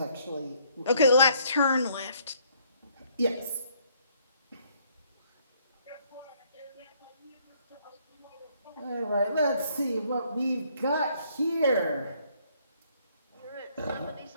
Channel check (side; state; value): both; inverted; correlation -0.66